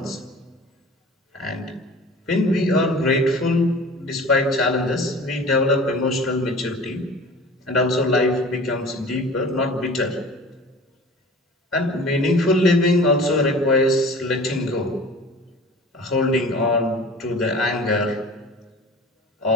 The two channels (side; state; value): both; normal; correlation 0.41